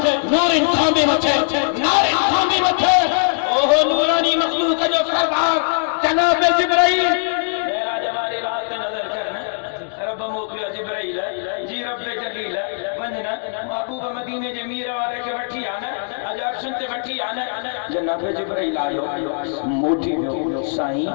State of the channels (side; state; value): right; silent; digital silence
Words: نور انکھاں میں مچے نار انکھاں میں مچے اوہ نورانی مخلوق جو سردار جناب جبرائیل میرا جمالی رات پہ نظر کرنا رب موکلیا جبرائیل جی رب جلیل ونجنا محبوب مدینے جمیر والے کے وٹھی آنا اجاب سنتے وٹھی آنا جناب جبرائیل آئیو موٹی میں